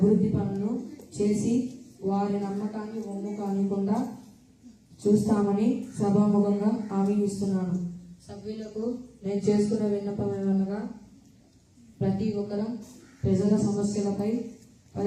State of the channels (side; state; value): both; identical; correlation 1.00